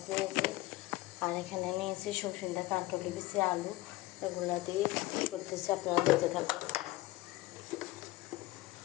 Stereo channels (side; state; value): right; quieter; 18.7 dB